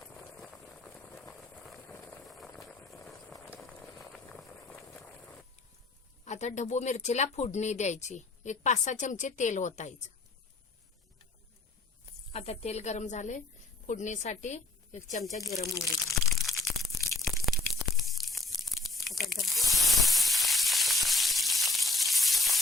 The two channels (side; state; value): right; quieter; 3.2 dB